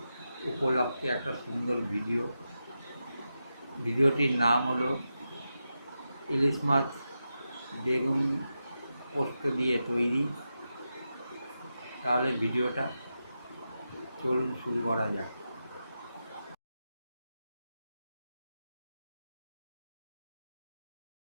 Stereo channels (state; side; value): inverted; both; correlation -0.89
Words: উপলক্ষে একটা সুন্দর ভিডিওটির নাম হলো ইলিশ মাছ বেগুন পোস্ত দিয়ে তৈরি। তাহলে ভিডিওটা চলুন শুরু করা যাক।